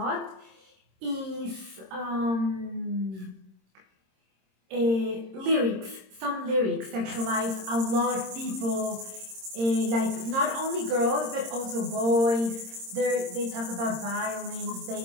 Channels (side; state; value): left; late; 26 ms